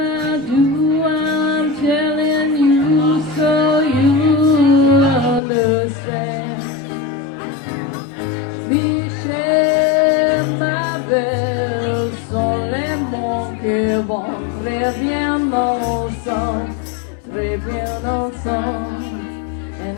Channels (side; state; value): right; drops out; at 5.4 s